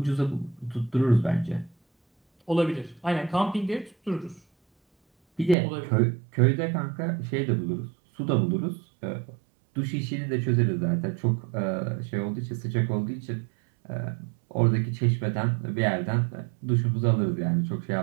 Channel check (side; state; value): left; drops out; at 5.6 s